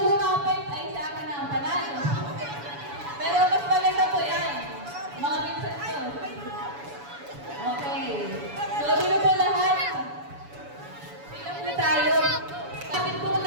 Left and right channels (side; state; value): left; late; 7.0 ms